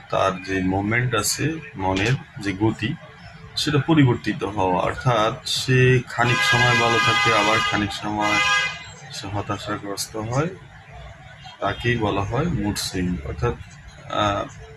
তার যে মোমেন্ট আছে, মনের যে গতি, সেটা পরিবর্তিত হওয়া। অর্থাৎ সে খানিক সময় ভালো থাকে, আবার খানিক সময় সে হতাশাগ্রস্ত হয়। তাকেই বলা হয় মুড সুইং। অর্থাৎ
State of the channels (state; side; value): identical; both; correlation 1.00